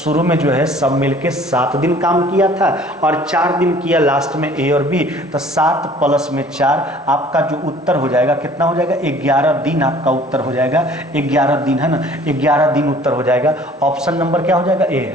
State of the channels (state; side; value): normal; both; correlation 0.52